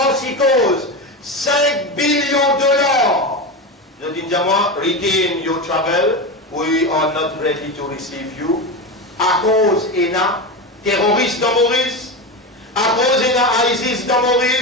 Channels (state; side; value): normal; both; correlation 0.19